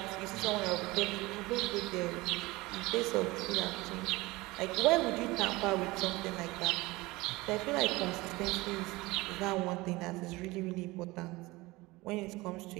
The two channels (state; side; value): quieter; left; 21.3 dB